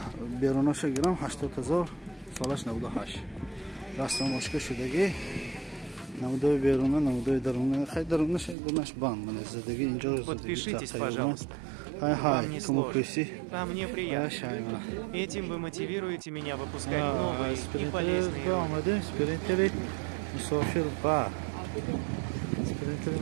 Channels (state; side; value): drops out; left; at 8.6 s